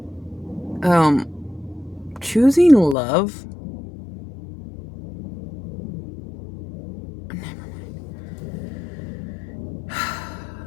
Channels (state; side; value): drops out; right; at 3.0 s